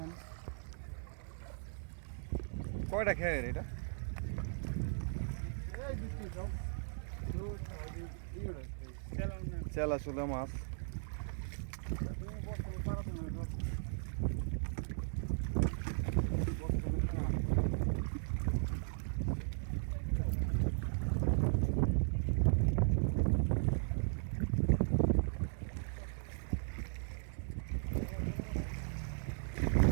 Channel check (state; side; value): silent; left; digital silence